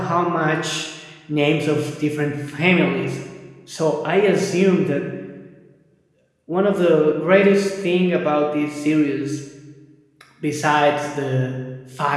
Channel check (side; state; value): both; identical; correlation 1.00